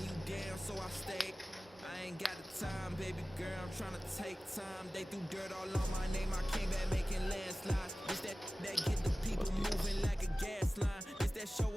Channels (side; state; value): both; normal; correlation 0.97